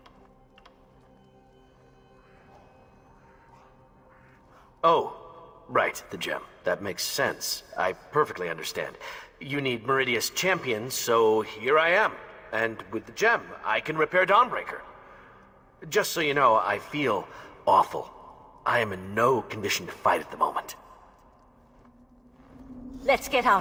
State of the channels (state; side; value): identical; both; correlation 1.00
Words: Oh, right, the gem. That makes sense. I perfectly understand. You need Meridia's champion, so here I am. And with the gem, I can repair Dawnbreaker. Just so you know, I feel awful. I am in no condition to fight at the moment. Let's get